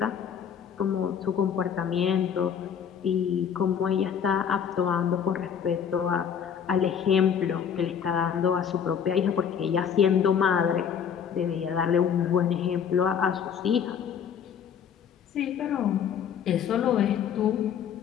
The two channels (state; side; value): quieter; right; 7.9 dB